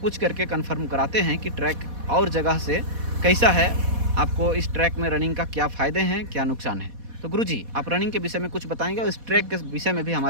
करके कंफर्म कराते हैं कि ट्रैक और जगह से कैसा है, आपको इस ट्रैक में रनिंग का क्या फ़ायदे हैं, क्या नुकसान है। तो गुरुजी आप रनिंग के विषय में कुछ बताएंगे और इस ट्रैक के विषय में भी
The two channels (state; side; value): late; left; 4.1 ms